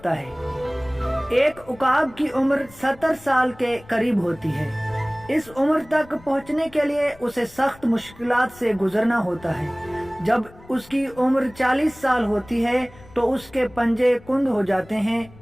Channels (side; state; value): left; noise; rumble, 23 dB below the sound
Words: है। एक उकाब की उम्र 70 साल के करीब होती है। इस उम्र तक पहुंचने के लिए उसे सख्त मुश्किलात से गुजरना होता है। जब उसकी उम्र 40 साल होती है तो उसके पंजे कुंद हो जाते हैं,